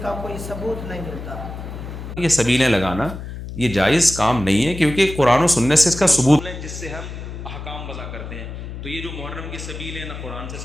کا کوئی ثبوت نہیں ملتا۔ یہ سبیلیں لگانا یہ جائز کام نہیں ہے، کیونکہ قرآن و سنت سے اس کا ثبوت ہے جس سے ہم احکام وضع کرتے ہیں۔ تو یہ جو محرم کی سبیل ہے نہ قرآن سے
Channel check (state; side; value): noise; left; hum, 9 dB below the sound